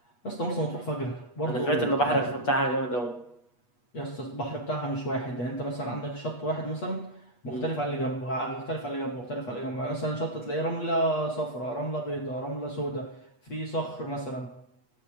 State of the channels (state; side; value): late; right; 8.3 ms